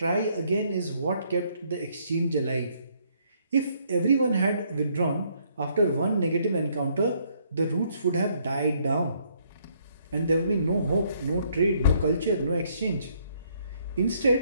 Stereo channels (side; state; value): both; inverted; correlation -0.68